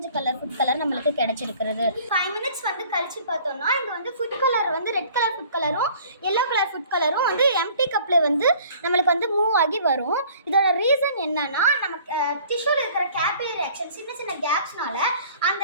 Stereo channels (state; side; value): inverted; both; correlation -0.52